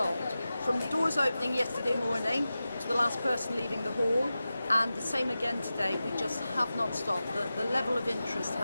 From the doors opening yesterday morning to the last person leaving the hall, and the same again today, we just have not stopped. The level of interest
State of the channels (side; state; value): both; inverted; correlation -0.94